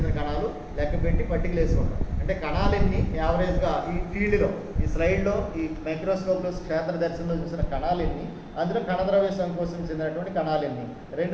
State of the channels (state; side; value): identical; both; correlation 1.00